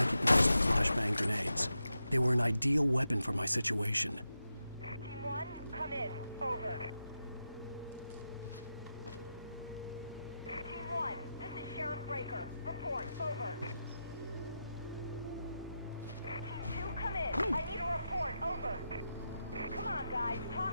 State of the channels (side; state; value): both; inverted; correlation -0.88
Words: the flashbang grenades. They were an ideal weapon for my situation. Team 1, come in. Over. Team 1, this is Sheriff Breaker. Report. Over. Team 2, come in. I need a report. Over. Come on, guys.